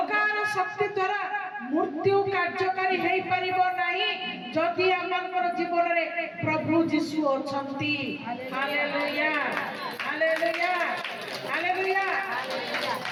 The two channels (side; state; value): both; identical; correlation 1.00